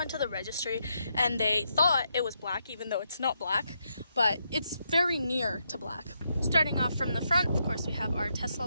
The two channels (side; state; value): both; inverted; correlation -0.80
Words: to the registry and they thought it was black, even though it's not black, but it's very near to black. Starting off from the front, of course, we have our Tesla